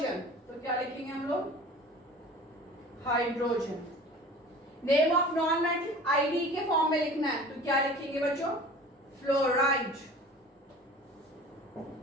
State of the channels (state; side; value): normal; both; correlation 0.42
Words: तो क्या लिखेंगे हम लोग? Hydrogen. Name of non metal ID के फॉर्म में लिखना है तो क्या लिखेंगे बच्चों? Fluoride.